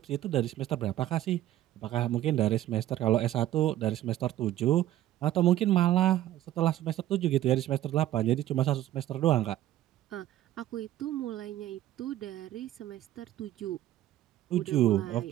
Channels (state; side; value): quieter; left; 13.6 dB